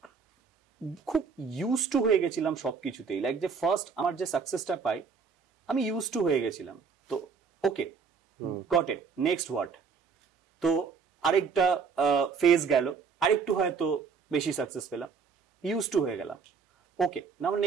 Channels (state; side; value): quieter; left; 5.6 dB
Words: খুব ইউজ টু হয়ে গেছিলাম সবকিছুতেই। লাইক যে ফার্স্ট আমার যে সাকসেসটা পাই, আমি ইউজ টু হয়ে গেছিলাম, তো ওকে গট ইট, নেক্সট হোয়াট, তো আরেকটা ফেজ গেল, আরেকটু হয়তো বেশি সাকসেস পেলাম, ইউজ টু হয়ে গেলাম, ওকে নাও